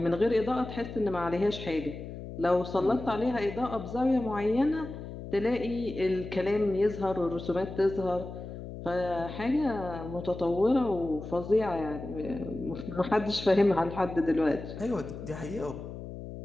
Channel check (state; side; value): noise; left; hum, 10 dB below the sound